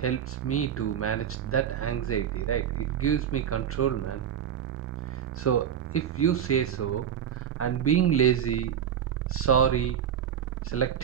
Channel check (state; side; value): quieter; left; 9.0 dB